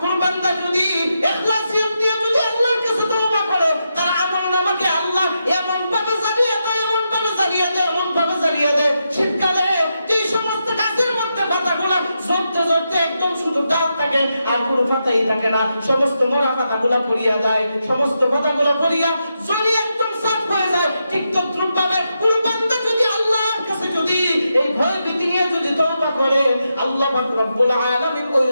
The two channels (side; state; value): both; inverted; correlation -0.85